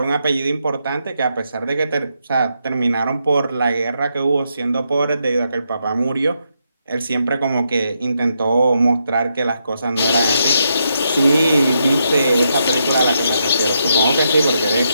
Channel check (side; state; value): both; inverted; correlation -0.80